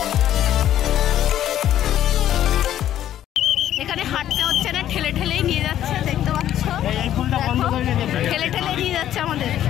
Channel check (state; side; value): quieter; right; 11.7 dB